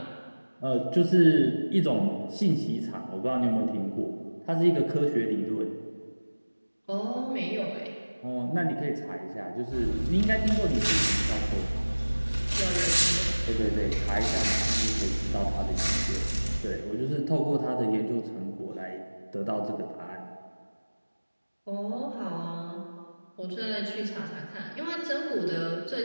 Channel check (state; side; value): inverted; both; correlation -1.00